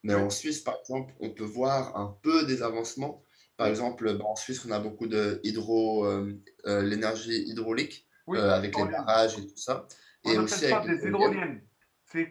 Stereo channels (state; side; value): identical; both; correlation 1.00